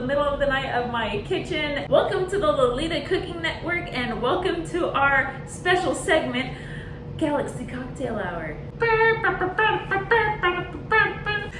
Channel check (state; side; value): identical; both; correlation 1.00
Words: middle of the night of my kitchen. Welcome to the Lolita Cooking Network, and welcome to our special segment, Galaxy Cocktail Hour.